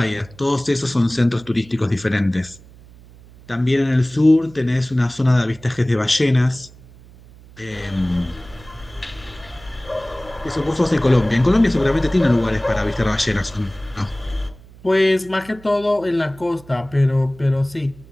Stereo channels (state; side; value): noise; right; hum, 23 dB below the sound